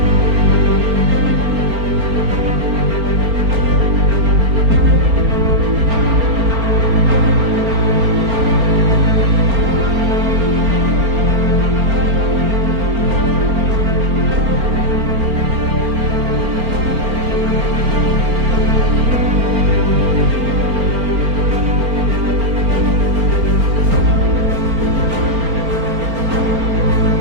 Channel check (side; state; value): left; late; 4.4 ms